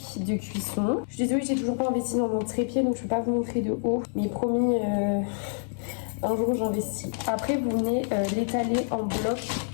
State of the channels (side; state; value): right; silent; digital silence